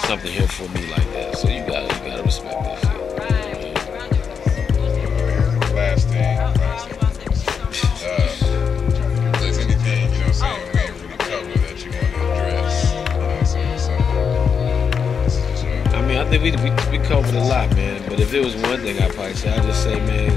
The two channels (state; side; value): quieter; right; 6.5 dB